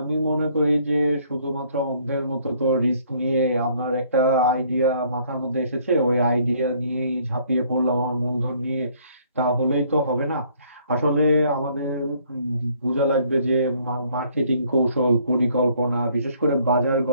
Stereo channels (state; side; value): inverted; both; correlation -0.63